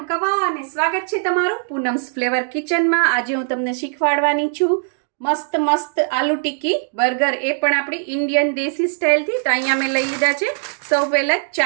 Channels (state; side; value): silent; left; 66 dB below the other